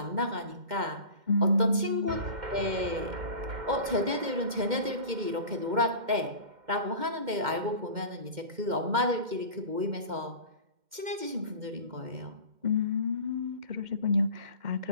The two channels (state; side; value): late; left; 2.1 ms